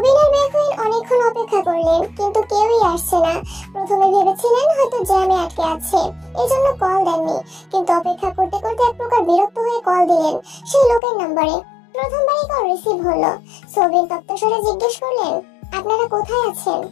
আর বেখুইন অনেকক্ষণ অপেক্ষা করলেন কিন্তু কেউই আসছে না। প্রথমে ভেবেছিলেন হয়তো জ্যামে আটকে আছে, এজন্য কল দেননি, কিন্তু অপেক্ষা করতে করতে এক প্রকার বিরক্ত হয়ে কল দিলেন সেই লোকের নম্বরে। প্রথমবারই কল রিসিভ হলো। সৌবিন তপ্তস্বরে জিজ্ঞেস করলেন, আপনারা কোথায় আছেন?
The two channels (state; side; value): drops out; right; at 11.0 s